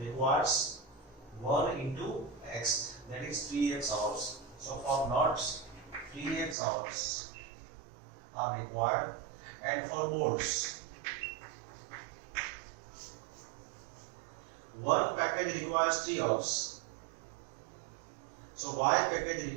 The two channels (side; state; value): left; drops out; at 6.6 s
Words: 1 into X, that is 3x hours. So for nuts, 3x hours are required, and for bolts, one package requires 3 hours. So Y package